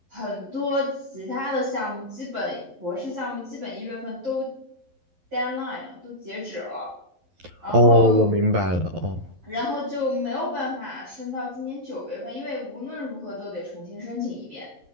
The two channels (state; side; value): late; left; 11 ms